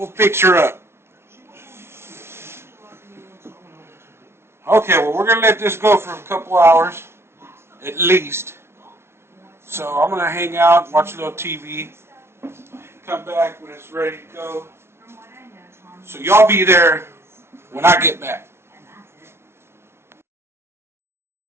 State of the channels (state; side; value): late; left; 0.12 ms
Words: fix her up. Okay, well, we're going to let this go for a couple hours, at least. So I'm going to hang out, watch a little TV, come back when it's ready to go. So y'all be there when I get back.